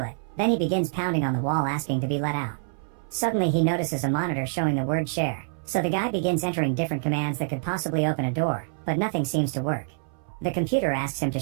Then he begins pounding on the wall asking to be let out. Suddenly he notices a monitor showing the word share, so the guy begins entering different commands that could possibly open a door, but nothing seems to work. The computer asks him to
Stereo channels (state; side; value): silent; left; 59 dB below the other